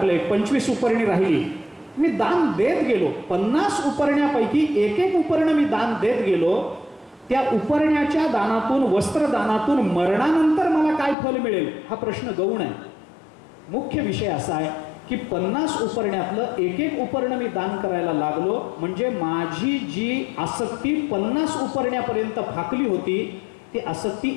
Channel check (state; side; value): drops out; right; at 11.2 s